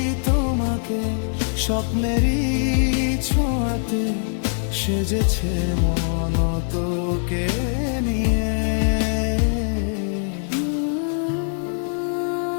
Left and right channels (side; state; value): right; silent; 64 dB below the other